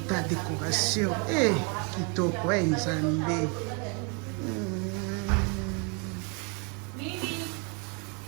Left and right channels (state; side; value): quieter; left; 34.9 dB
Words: Ta décoration. Kitoko, nzambe.